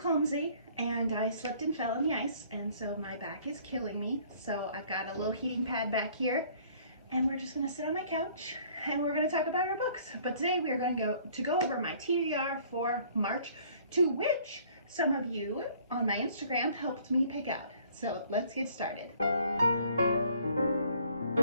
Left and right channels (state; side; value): inverted; both; correlation -0.57